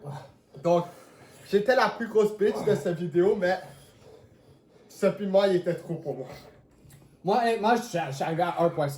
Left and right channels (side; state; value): both; identical; correlation 1.00